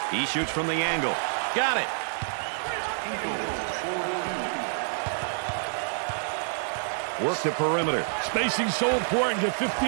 He shoots from the angle. Got it. Work the perimeter. Spacing so important. Get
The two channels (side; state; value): left; silent; 60 dB below the other